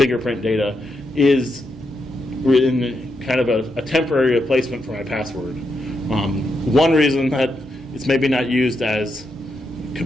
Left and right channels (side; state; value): both; normal; correlation 0.83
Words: data, is in kind of a temporary replacement for my password. One reason that it's maybe not used as